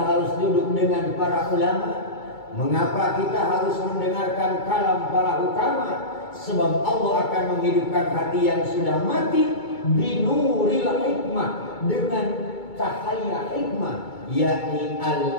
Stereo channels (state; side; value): late; right; 2.3 ms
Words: duduk dengan para ulama? Mengapa kita harus mendengarkan kalam para hukama? Sebab Allah akan menghidupkan hati yang sudah mati binuril hikmah, dengan cahaya hikmah, yakni